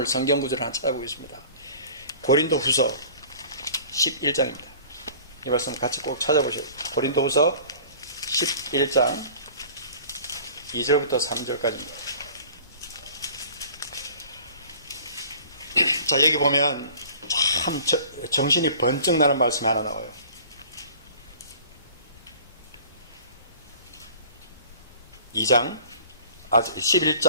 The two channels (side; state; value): both; inverted; correlation -0.47